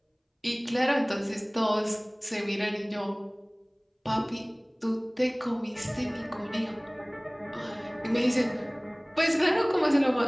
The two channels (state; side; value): identical; both; correlation 1.00